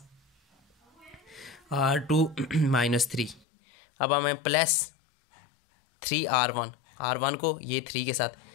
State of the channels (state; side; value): drops out; right; at 3.4 s